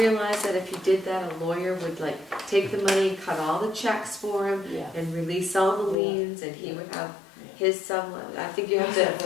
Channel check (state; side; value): drops out; right; at 6.0 s